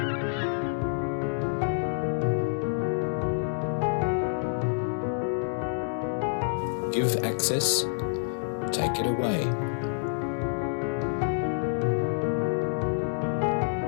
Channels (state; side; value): silent; right; digital silence